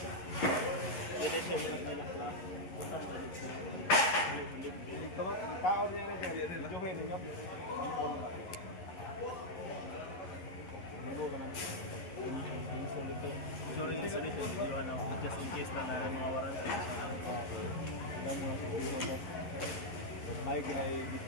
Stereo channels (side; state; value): right; late; 11 ms